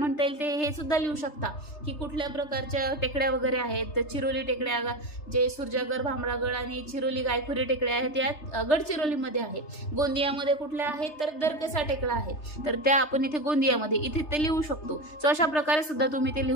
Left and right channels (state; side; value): late; right; 3.3 ms